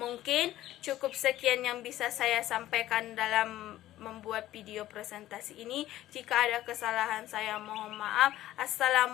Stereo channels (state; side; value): quieter; right; 14.4 dB